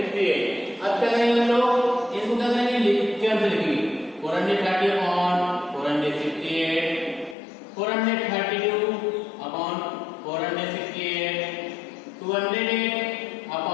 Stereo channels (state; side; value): drops out; right; at 7.4 s